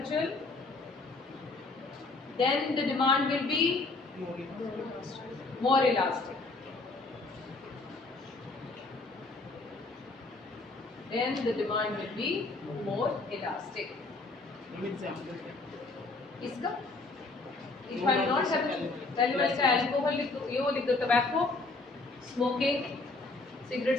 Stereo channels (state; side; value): quieter; right; 3.4 dB